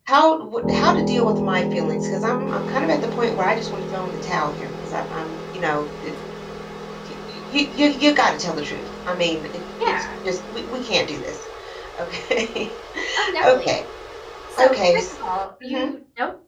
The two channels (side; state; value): both; identical; correlation 1.00